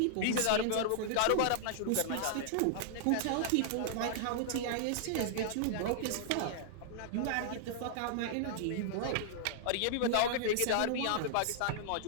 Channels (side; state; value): both; different; correlation -0.01